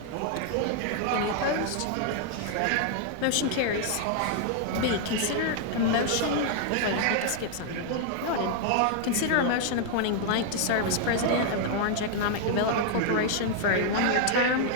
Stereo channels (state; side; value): different; both; correlation 0.00